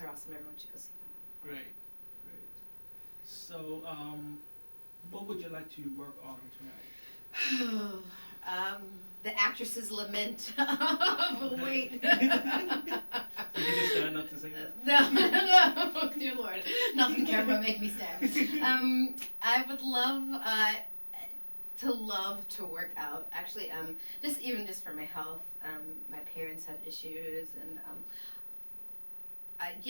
awesome. Everyone should go see them. Great. So, what would you like to work on tonight? The actress's lament of weight. Did you just stand up to say that? No, dear Lord, nothing camera make me stand. I would love to work out. Actually, just for my health. My parents have issues, and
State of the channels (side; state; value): both; inverted; correlation -1.00